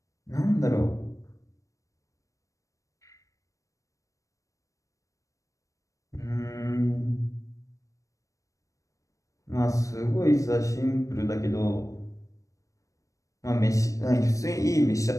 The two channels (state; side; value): late; right; 0.16 ms